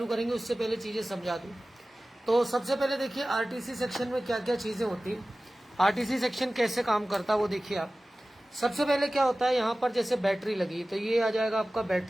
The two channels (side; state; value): both; normal; correlation 0.97